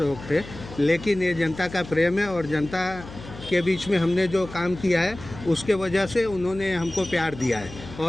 थे, लेकिन ये जनता का प्रेम है और जनता के बीच में हमने जो काम किया है उसके वजह से उन्होंने हमको प्यार दिया है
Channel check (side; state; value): left; noise; hum, 15 dB below the sound